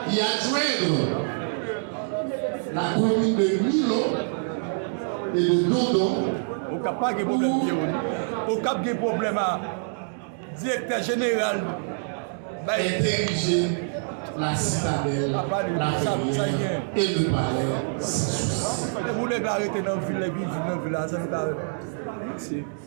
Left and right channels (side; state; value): left; silent; digital silence